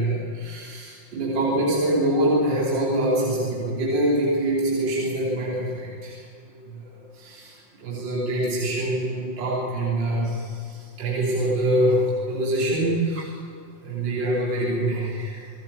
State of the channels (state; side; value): late; left; 5.6 ms